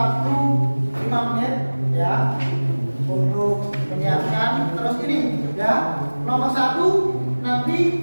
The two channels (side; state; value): both; inverted; correlation -1.00